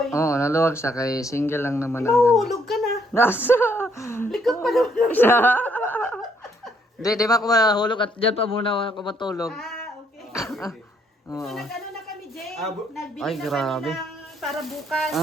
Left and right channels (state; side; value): normal; both; correlation 0.70